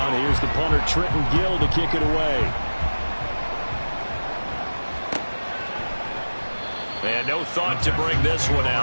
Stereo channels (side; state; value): both; inverted; correlation -1.00